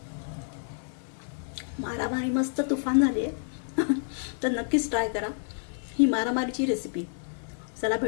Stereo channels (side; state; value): right; silent; 56 dB below the other